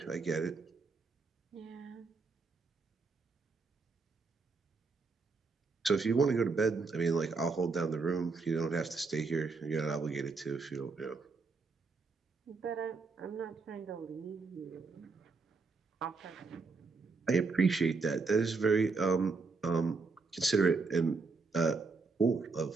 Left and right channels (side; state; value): left; quieter; 4.3 dB